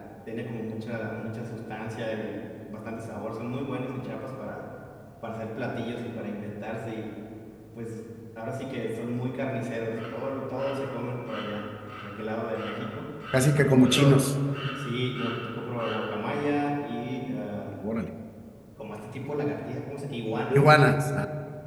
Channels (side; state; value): both; identical; correlation 1.00